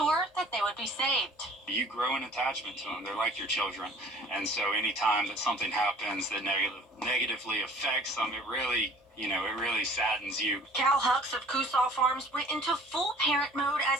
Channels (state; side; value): normal; both; correlation 0.50